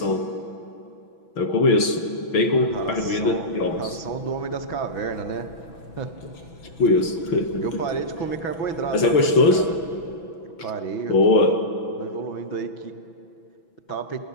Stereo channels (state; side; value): late; right; 6.1 ms